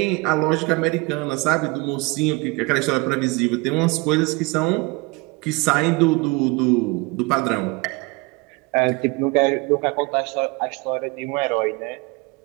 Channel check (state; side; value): quieter; left; 26.4 dB